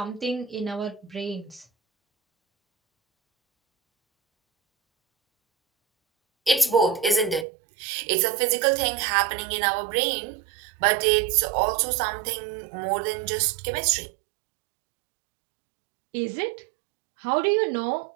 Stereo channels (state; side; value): drops out; left; at 7.5 s